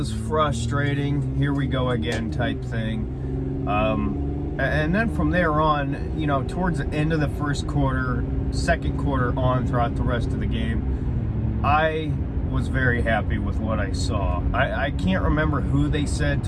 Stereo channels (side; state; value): both; identical; correlation 1.00